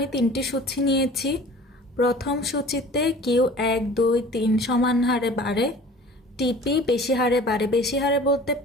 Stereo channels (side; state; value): both; normal; correlation 0.45